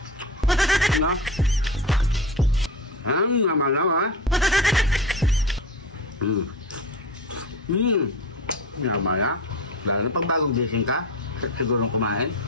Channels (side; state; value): both; normal; correlation 0.27